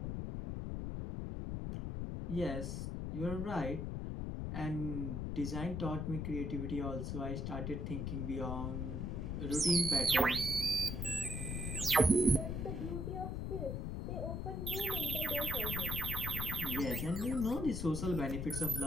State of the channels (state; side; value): noise; left; rumble, 3 dB below the sound